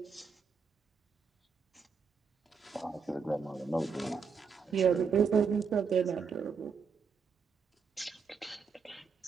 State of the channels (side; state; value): left; quieter; 5.7 dB